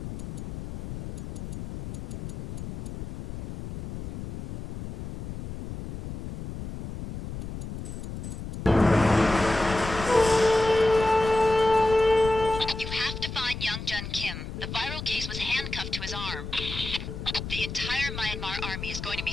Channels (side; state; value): left; noise; rumble, 8 dB below the sound